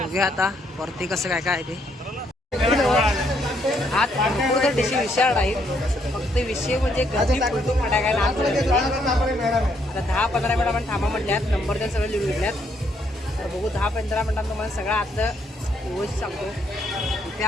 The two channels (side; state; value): both; normal; correlation 0.72